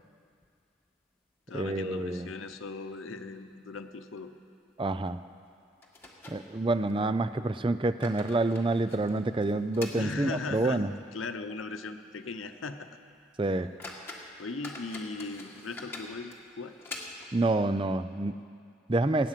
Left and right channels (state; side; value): normal; both; correlation 0.69